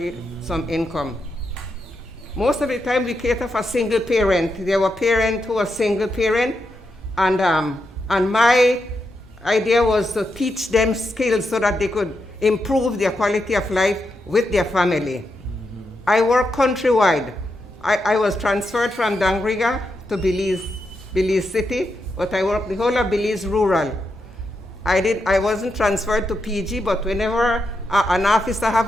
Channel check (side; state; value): both; normal; correlation 0.84